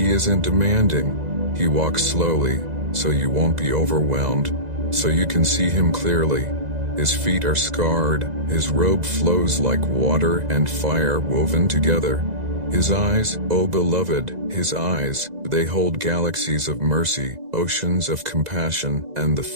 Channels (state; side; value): late; left; 2.0 ms